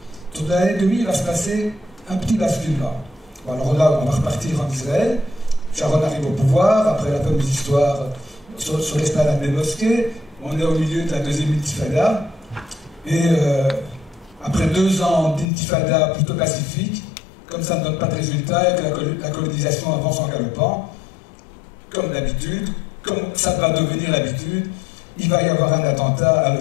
Autour de l'année 2000, il va se passer un petit basculement. Bon, alors là, on va repartir en Israël. Sharon arrive au pouvoir, après la fameuse histoire sur l'esplanade des mosquées. On est au milieu de la deuxième intifada. Et après 2 ans d'intifada plutôt pacifique, comme ça ne donne pas de résultat et que la colonisation avance en galopant, comme d'habitude, comme ça va devenir l'habitude, il va y avoir un attentat à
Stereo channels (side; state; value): right; drops out; at 15.5 s